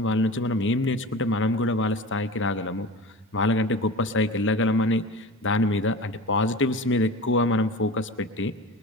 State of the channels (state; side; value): normal; both; correlation 0.33